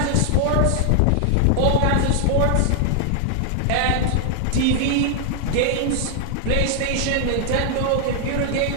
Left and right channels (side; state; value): both; different; correlation 0.00